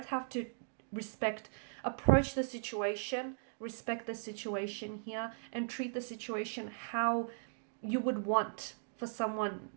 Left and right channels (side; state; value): left; silent; digital silence